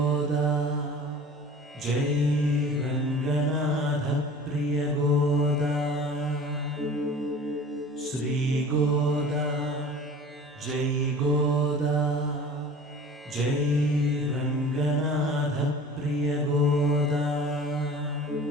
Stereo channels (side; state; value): both; normal; correlation 0.42